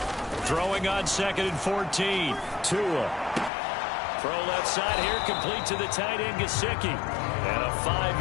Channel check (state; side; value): drops out; right; at 3.5 s